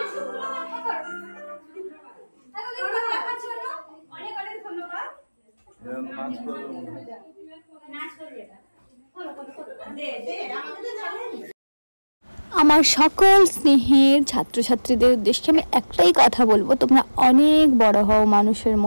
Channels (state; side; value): inverted; both; correlation -1.00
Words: অনেক অনেক ধন্যবাদ। আমার সকল স্নেহের ছাত্রছাত্রীদের উদ্দেশ্যে আমি একটাই কথা বলবো, তোমরা অনেক বড় হও, মানুষের